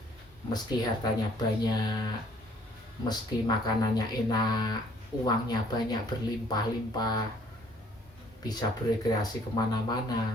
meski hartanya banyak, meski makanannya enak, uangnya banyak, berlimpah-limpah, bisa berekreasi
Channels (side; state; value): both; normal; correlation 0.60